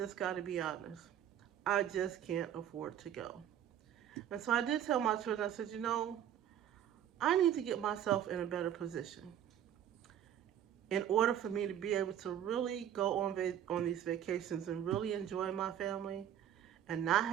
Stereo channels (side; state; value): left; quieter; 10.3 dB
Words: got to be honest. I just can't afford to go. And so I did tell my children, I said, I need to get myself in a better position in order for me to be able to really go on these vacations and really enjoy my family and not